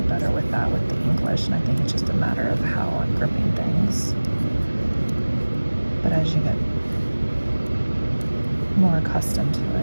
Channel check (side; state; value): both; inverted; correlation -1.00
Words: better with that with the English, and I think it's just a matter of how I'm gripping things. But as you get more accustomed to